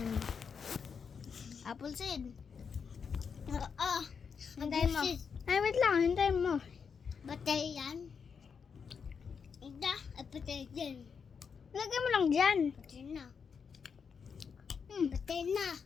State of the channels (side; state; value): right; quieter; 6.2 dB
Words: mo. Apple seed. Hintayin mo. Ay, wait lang. Hintayin mo. Batay yan. Patay din. Lagay mo lang dyan. Patay na. Patay na.